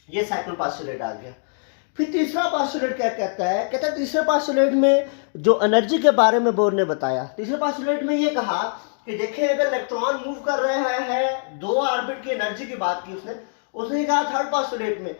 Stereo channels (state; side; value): silent; right; digital silence